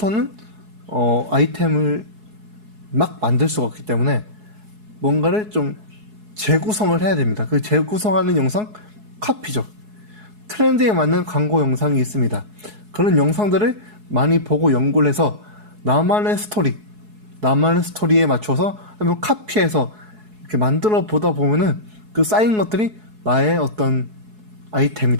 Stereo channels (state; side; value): late; left; 4.7 ms